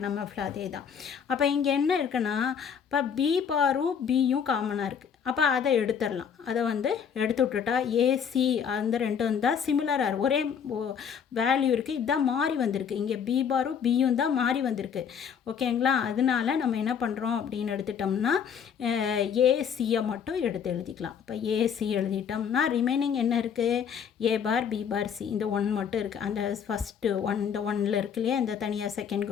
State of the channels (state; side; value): quieter; right; 7.4 dB